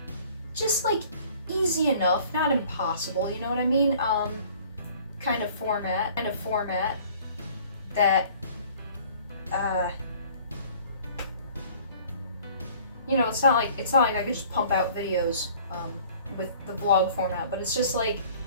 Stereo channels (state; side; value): inverted; both; correlation -0.52